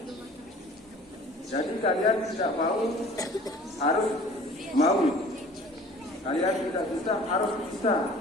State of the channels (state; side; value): normal; both; correlation 0.47